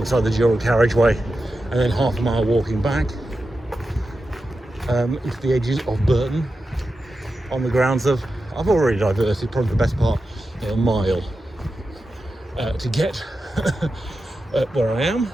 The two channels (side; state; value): both; normal; correlation 0.91